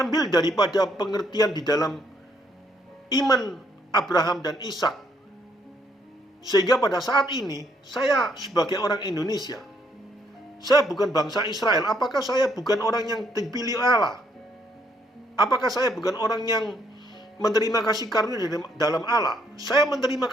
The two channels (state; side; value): normal; both; correlation 0.71